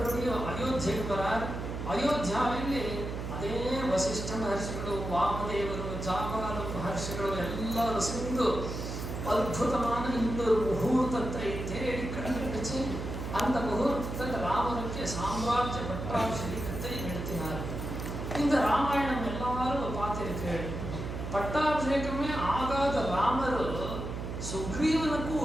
அயோத்தியக்கு வரார். ಅಯೋಧ್ಯಾದಲ್ಲಿ ಅದೇ ವಸಿಷ್ಠ ಮಹರ್ಷಿಗಳು, ವಾಮದೇವರು, ಜಾಬಾಲ ಮಹರ್ಷಿಗಳು ಎಲ್ಲರೂ சேர்ந்து அற்புதமான இன்னொரு முகூர்த்தத்தை தேடி கண்டுபிடிச்சு அந்த முகூர்த்தத்தில் ராமனுக்கு சாம்ராஜ்ய பட்டாபிஷேகத்தை நடத்தினார். இந்த ராமாயணம் எல்லாரும் பார்த்திருக்கேன். பட்டாபிஷேகமே ஆகாத ராமர்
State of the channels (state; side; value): noise; right; hum, 6 dB below the sound